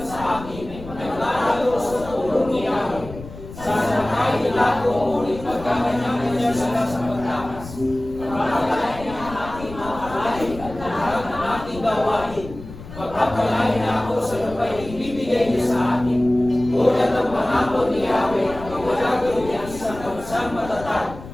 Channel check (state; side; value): noise; left; rumble, 14 dB below the sound